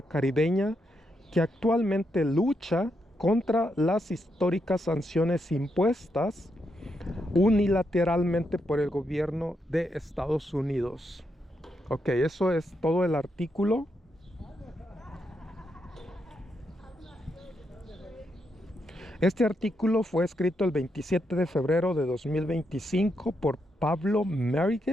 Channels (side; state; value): both; normal; correlation 0.81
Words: caribeña, que actualmente lucha contra las históricas sanciones impuestas unilateralmente por el gobierno de Estados Unidos. Ok, eso es todo el artículo. Este artículo fue escrito el 27 de febrero de 2025 por Pablo